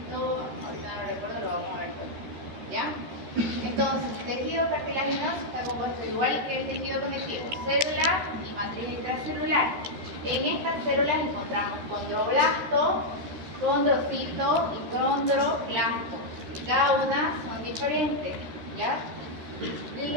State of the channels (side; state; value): left; late; 13 ms